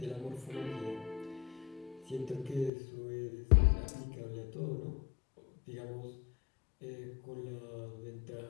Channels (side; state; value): right; drops out; at 2.7 s